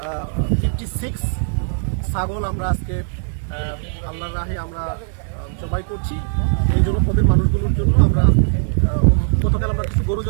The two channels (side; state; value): left; silent; digital silence